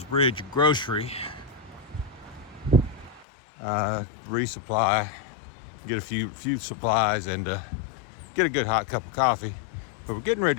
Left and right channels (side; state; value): right; drops out; at 3.2 s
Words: Bridge Grocery. Resupply, get a few supplies, and get a good hot cup of coffee. But we're getting